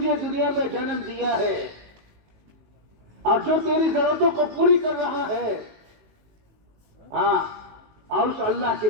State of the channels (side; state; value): left; late; 19 ms